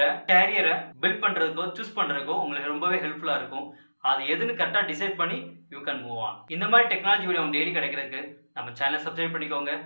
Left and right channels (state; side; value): inverted; both; correlation -1.00